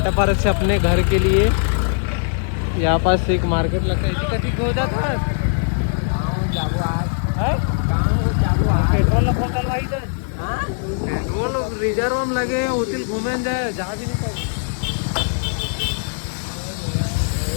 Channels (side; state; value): right; silent; digital silence